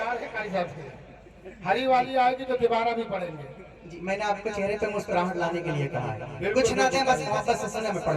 कारी साहब से हरी वाली आएगी तो तिवारा भी पढ़ेंगे जी। मैंने आपको चेहरे पे मुस्कुराहट लाने के लिए कहा है, कुछ ना दें बस मोहब्बत से सुने, मैं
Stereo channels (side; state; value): both; identical; correlation 1.00